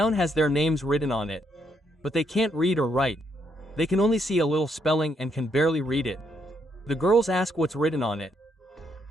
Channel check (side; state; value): both; normal; correlation 0.75